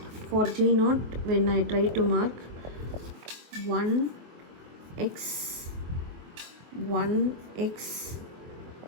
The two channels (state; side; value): late; left; 23 ms